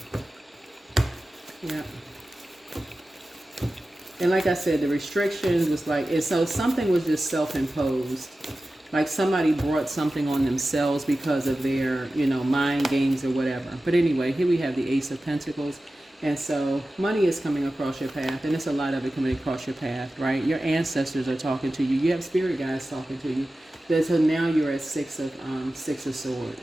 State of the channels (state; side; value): normal; both; correlation 0.95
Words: yeah. And like I said, the restrictions was like, so something was just self-imposed. Like somebody brought something on themselves because of their, mind games or whatever. But anyway, here we have the Ace of Pentacles. And so money is coming across your path. And there's a lot of it coming across your path, right? Your ancestors are talking to you. You have spirit guides talking to you. So now you're at six of swords.